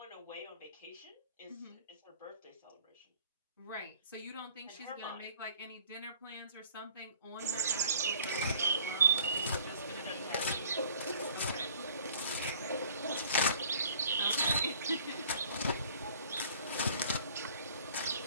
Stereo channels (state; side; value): inverted; both; correlation -0.53